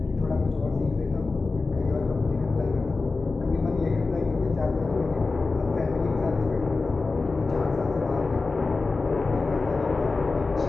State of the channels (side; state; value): right; quieter; 3.8 dB